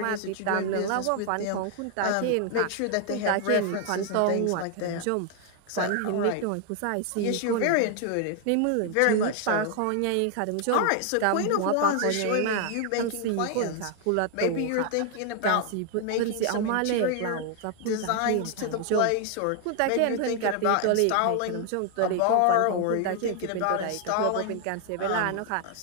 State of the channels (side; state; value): both; different; correlation 0.00